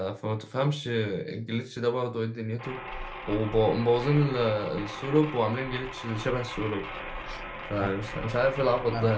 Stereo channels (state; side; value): identical; both; correlation 1.00